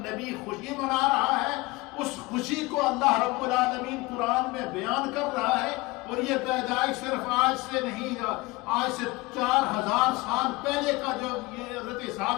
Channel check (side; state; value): right; quieter; 22.5 dB